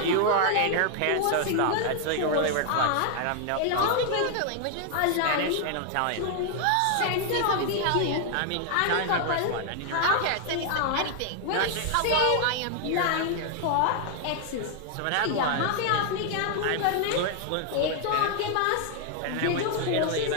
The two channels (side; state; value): both; different; correlation 0.00